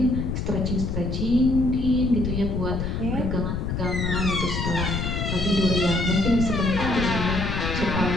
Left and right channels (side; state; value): left; noise; rumble, 2 dB below the sound